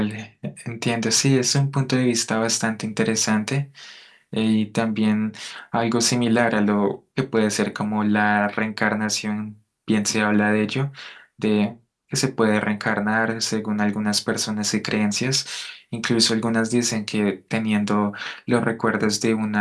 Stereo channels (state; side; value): identical; both; correlation 1.00